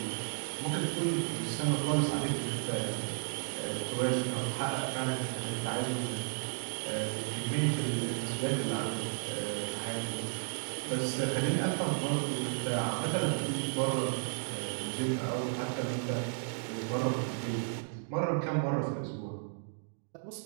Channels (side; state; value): left; silent; digital silence